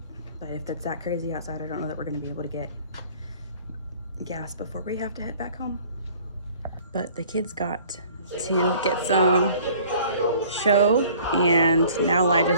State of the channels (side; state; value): both; inverted; correlation -0.52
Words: but if it's that crazy outside, I don't know that we're gonna be able to get gas before we have to head back home. But the kids got to get some show, and now Elijah